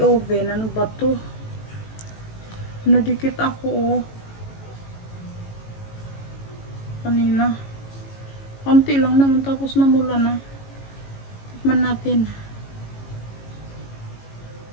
oven. Ano ba to? Nadikit ako kanina. Konti lang naman tapos namula na. Tikman natin.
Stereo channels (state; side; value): late; right; 18 ms